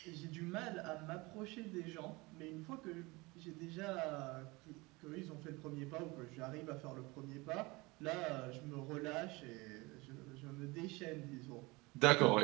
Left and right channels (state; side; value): quieter; left; 23.9 dB